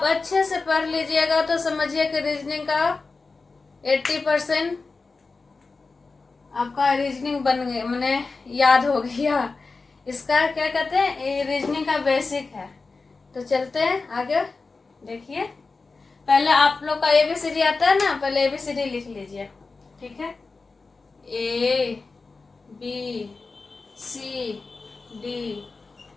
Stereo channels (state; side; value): quieter; right; 4.0 dB